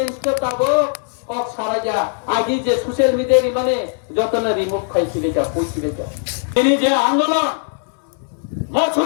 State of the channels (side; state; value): right; silent; 66 dB below the other